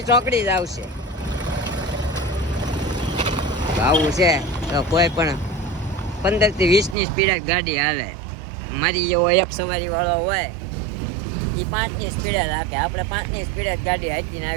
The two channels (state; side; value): drops out; left; at 7.0 s